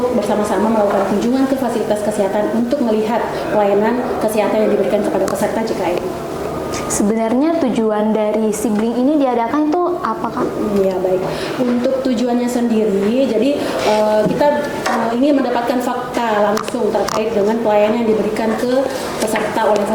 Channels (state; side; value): identical; both; correlation 1.00